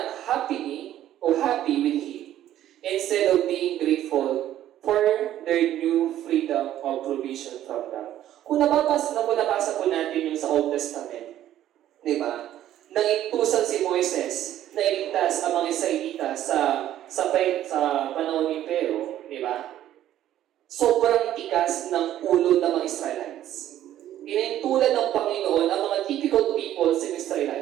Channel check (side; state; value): left; quieter; 12.3 dB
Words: happy with him, instead of being grateful for their new freedom of provision from God. Kung nabasa po natin yung sa Old Testament, di ba? Nangintusan si Moises na iligtas ang mga Israelita sa panahon ni Pero, di ba? Sobrang tigas ng ulo ng mga Israelites. Inintulan ng Panginoon ang mga difficult people sa